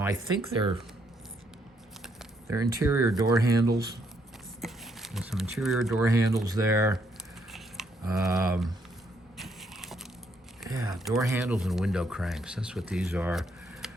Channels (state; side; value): normal; both; correlation 0.72